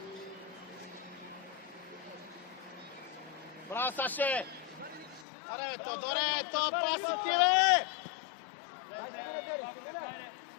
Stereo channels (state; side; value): drops out; right; at 5.2 s